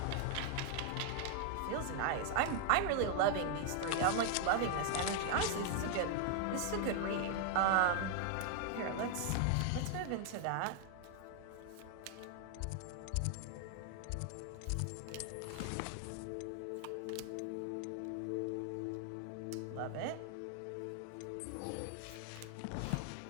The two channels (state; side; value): different; both; correlation 0.00